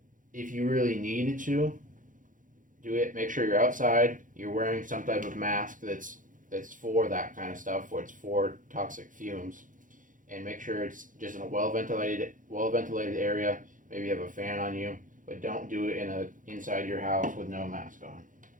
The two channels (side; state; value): left; late; 0.38 ms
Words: If you really needed to do it, make sure you're outside, you're wearing some type of mask that's for that kind of stuff, where it's for toxic fumes. And make sure it's just in a well ventilated area. Maybe you have a fan on you, but don't do it inside your house with no mask on.